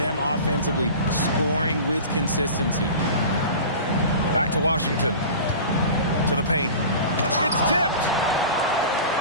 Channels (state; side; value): inverted; both; correlation -0.36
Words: offensively, scoring with consistency. Back to Washington. To the paint. It's tipped.